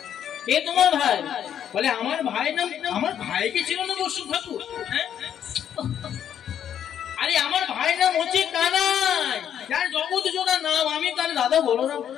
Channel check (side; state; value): right; quieter; 9.5 dB